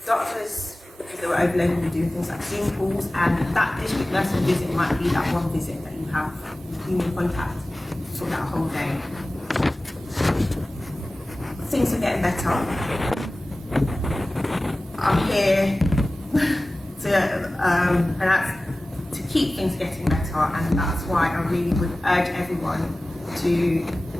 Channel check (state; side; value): normal; both; correlation 0.97